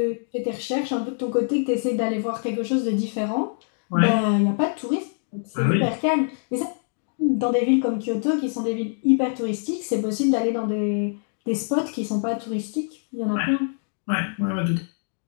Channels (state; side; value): silent; right; digital silence